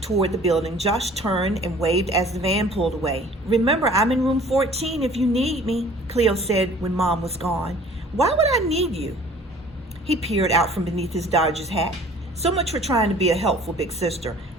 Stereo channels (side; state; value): both; normal; correlation 0.50